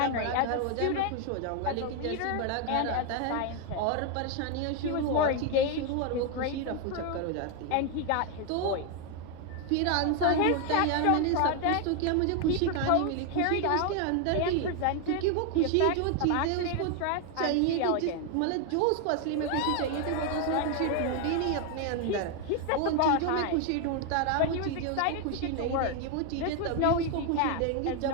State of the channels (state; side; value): different; both; correlation 0.01